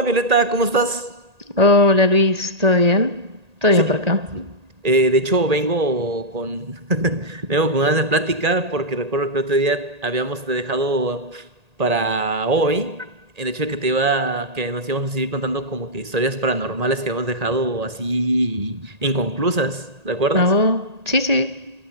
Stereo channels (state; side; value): late; left; 1.8 ms